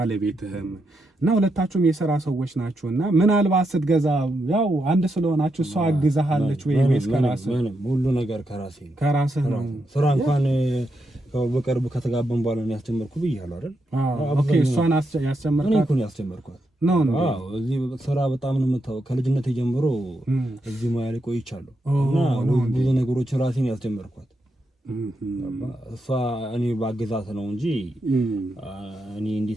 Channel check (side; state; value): both; normal; correlation 0.83